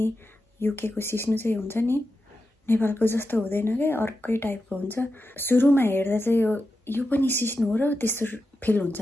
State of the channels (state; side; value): normal; both; correlation 0.90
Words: युके को सिस्नो चाहिँ हुन्छ नि, नेपालको जस्तो हुँदैन के, अर्कै टाइपको हुन्छ. सुरुमा हेर्दा चाहिँ यो पनि सिस्नो हो र त्यस्तो फिल हुन्छ